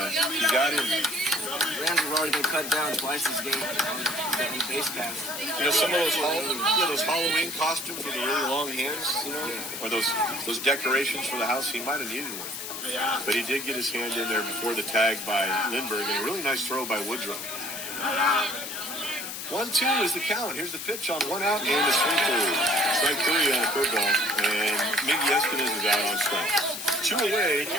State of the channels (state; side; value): noise; left; hiss, 7 dB below the sound